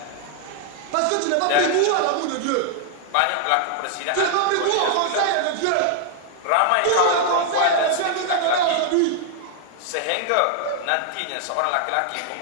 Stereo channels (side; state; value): both; different; correlation 0.00